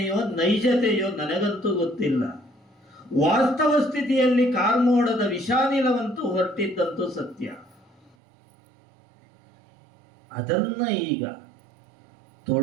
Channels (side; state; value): left; drops out; at 8.2 s